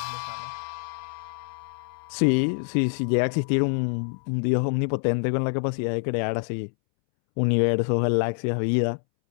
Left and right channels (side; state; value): right; silent; 61 dB below the other